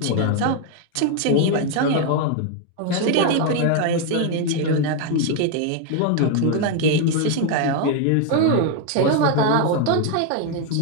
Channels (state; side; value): different; both; correlation 0.00